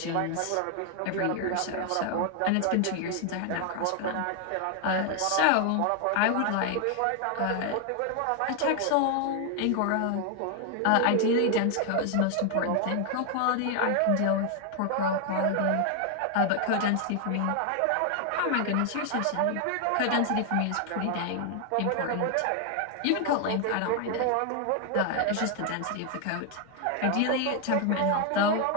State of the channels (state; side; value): different; both; correlation 0.00